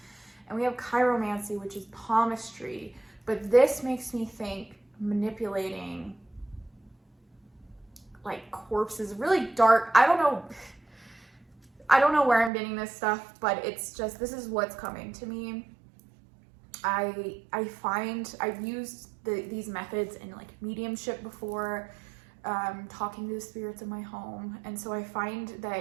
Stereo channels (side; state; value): left; drops out; at 12.5 s